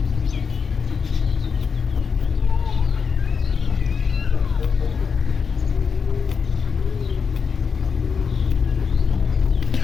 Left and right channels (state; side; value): quieter; right; 5.9 dB